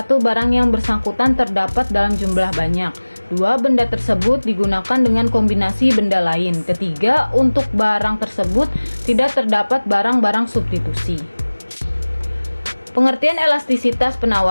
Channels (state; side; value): inverted; both; correlation -1.00